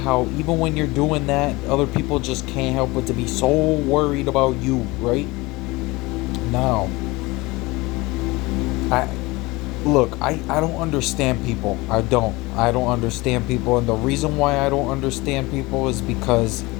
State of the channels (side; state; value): right; quieter; 22.4 dB